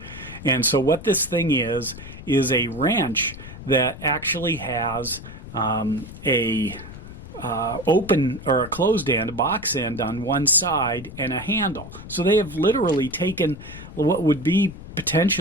And so what this thing is a wrench that actually has a open or a closed end, a box end on one side, and a handle. So they have literally taken what would be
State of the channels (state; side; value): noise; left; rumble, 14 dB below the sound